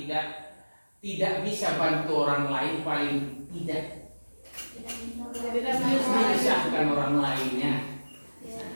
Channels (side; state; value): both; inverted; correlation -1.00